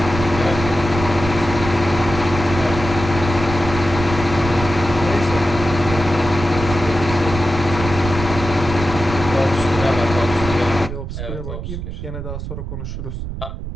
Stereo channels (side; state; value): right; noise; rumble, 7 dB below the sound